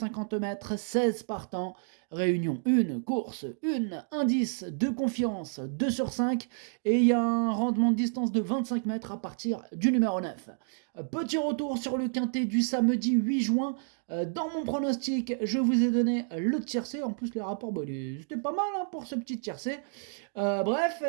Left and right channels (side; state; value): left; silent; digital silence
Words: mètres, 16 partants, réunion 1, course 1, indice de confiance 2 sur 5 et il y a un rendement de distance de 25 mètres à partir du numéro 9. Petit retour sur le quintet du samedi 8 juin. Dans mon pronostic, je vous ai donné le tiercé. En plus, les rapports, c'était pas mal pour ce petit tiercé. Bref,